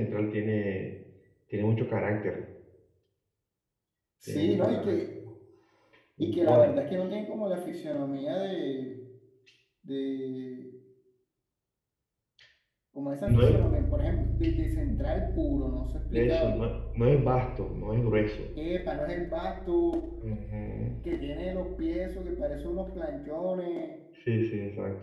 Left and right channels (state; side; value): identical; both; correlation 1.00